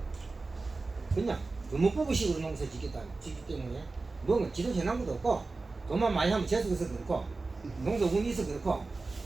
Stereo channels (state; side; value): quieter; left; 3.6 dB